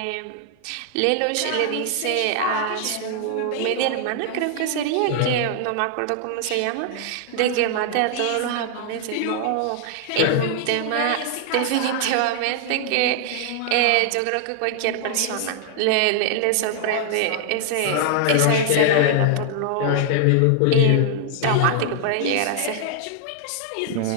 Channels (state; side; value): different; both; correlation 0.00